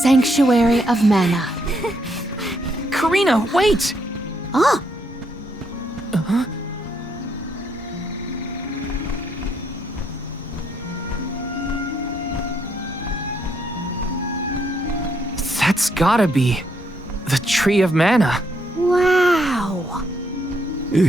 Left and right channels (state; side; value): normal; both; correlation 0.74